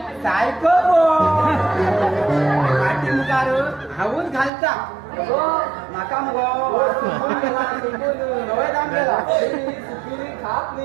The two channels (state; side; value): drops out; left; at 4.5 s